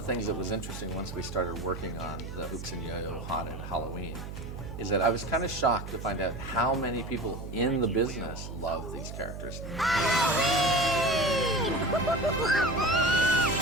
things that was interesting once we started working on the Hoops and Yo-Yo Haunted Halloween is that I was kind of shocked to find out how many people in the business love these characters.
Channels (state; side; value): noise; right; hum, 9 dB below the sound